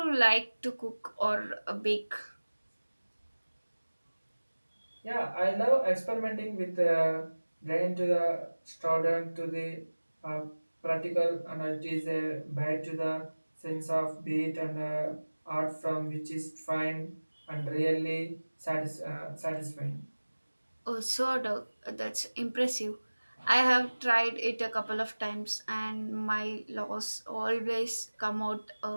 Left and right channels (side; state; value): both; inverted; correlation -1.00